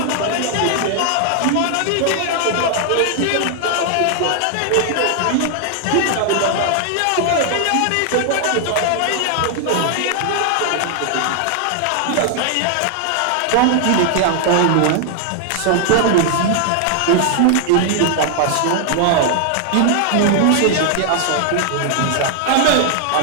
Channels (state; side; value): different; both; correlation 0.00